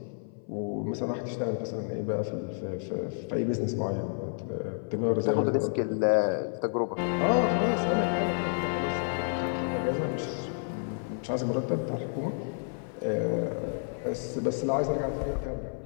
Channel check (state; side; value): silent; right; 58 dB below the other